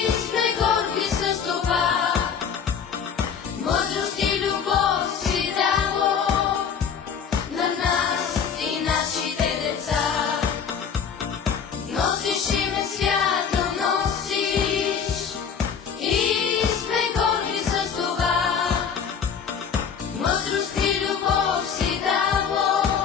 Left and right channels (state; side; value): quieter; right; 7.1 dB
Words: сме горди с това. Мъдрост и любов си дало на нас и нашите деца. Носиш име свято, носиш и сме горди с това. Мъдрост и любов си дало